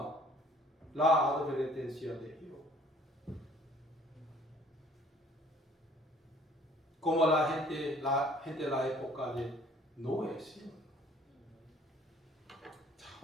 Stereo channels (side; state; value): both; normal; correlation 0.55